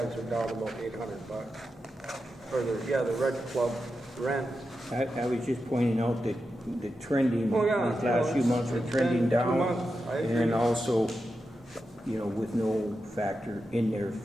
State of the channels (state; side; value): normal; both; correlation 0.89